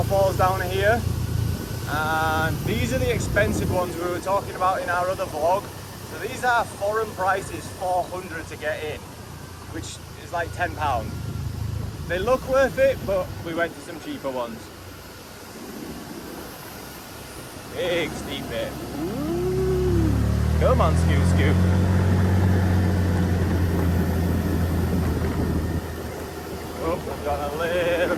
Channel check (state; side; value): identical; both; correlation 1.00